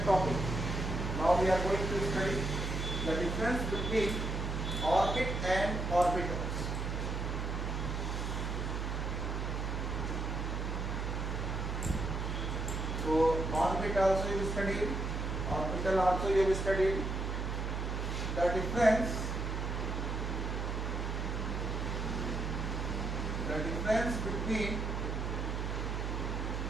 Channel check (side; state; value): right; noise; hum, 2 dB below the sound